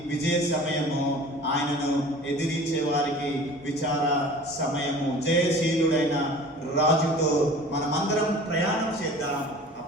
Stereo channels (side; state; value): both; normal; correlation 0.43